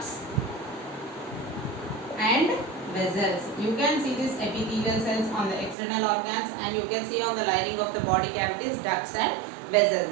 and vessels. You can see these epithelial cells on the external organs, and you can see on the lining of the body cavities, ducts and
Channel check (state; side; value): drops out; left; at 5.8 s